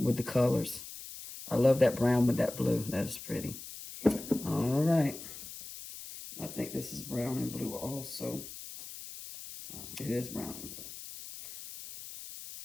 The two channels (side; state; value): left; noise; hiss, 12 dB below the sound